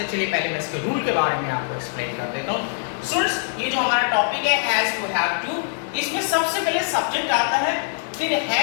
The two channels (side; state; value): right; silent; 63 dB below the other